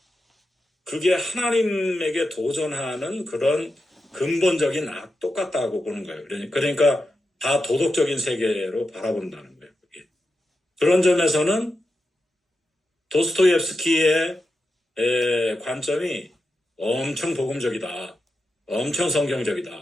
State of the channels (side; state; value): both; normal; correlation 0.89